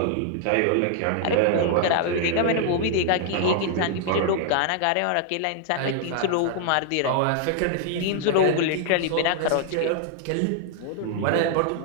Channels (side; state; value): both; different; correlation 0.00